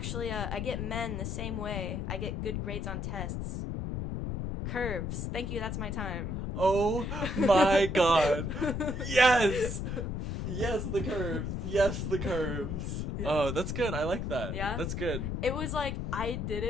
I get men the same way I get good grades on tests. Curves. Thank you. That's my time. Oh my god. Yes. Yes, the curves. Yes, the curves. Yeah. Oh, that's good. I like that. Yeah? That's good. It was like, I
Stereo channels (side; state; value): left; noise; rumble, 3 dB below the sound